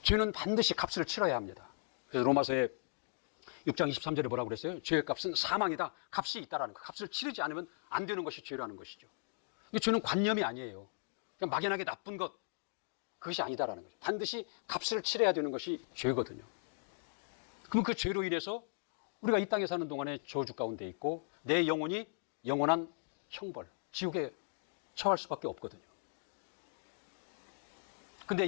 죄는 반드시 값을 치러야 합니다. 그래서 로마서의 6장 23절에 뭐라고 그랬어요? 죄의 값은 사망이다. 값이 있다라는 거. 값을 치르지 않으면 안 되는 것이 죄라는 것이죠. 이 죄는 관념이 아니에요. 그냥 막연하게 나쁜 것, 그것이 아니다라는 거죠. 반드시 값을 치러야 되는 것이 죄거든요. 그럼 그 죄로 인해서 우리가 이 땅에 사는 동안에 저주 가운데 있고 내 영혼이 영원한 형벌, 지옥에 처할 수밖에 없거든요. 근데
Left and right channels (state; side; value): silent; right; digital silence